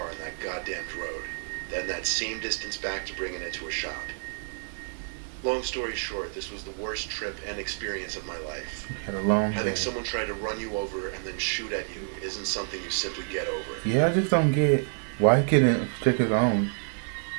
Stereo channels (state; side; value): silent; left; digital silence